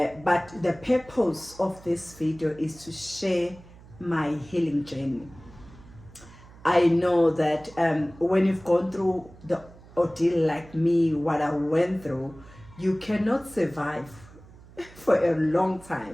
but the purpose of this video is to share my healing journey. I know that when you've gone through the ordeal like me, what I went through, you cannot survive for a long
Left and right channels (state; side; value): noise; right; hum, 21 dB below the sound